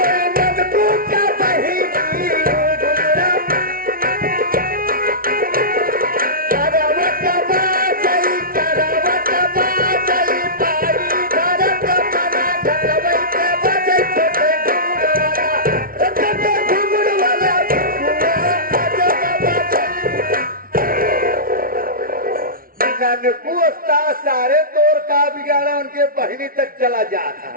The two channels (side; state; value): left; late; 0.42 ms